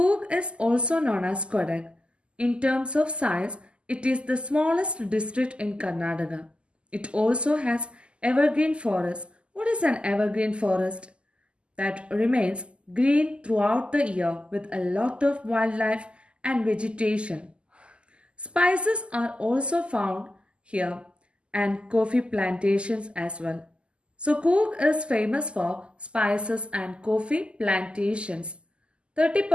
is also known as Kodag. In terms of size, it is the smallest district in Karnataka. It also has evergreen forest. What is an evergreen forest? That remains green throughout the year with a lot of wildlife and vegetation. Spices are also found here and coffee plantations as well. So Coorg is famous for spices and coffee plantations.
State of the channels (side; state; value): left; late; 0.052 ms